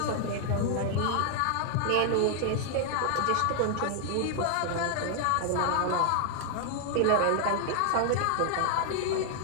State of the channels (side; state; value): both; different; correlation 0.00